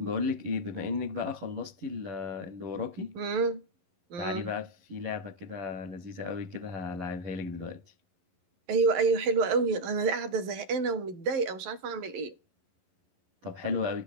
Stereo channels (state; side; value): late; left; 11 ms